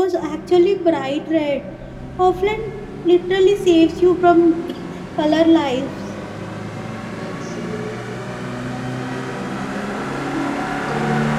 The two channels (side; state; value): both; identical; correlation 1.00